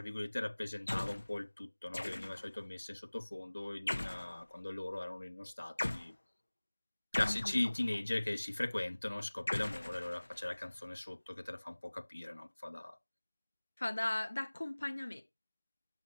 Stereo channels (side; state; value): both; inverted; correlation -1.00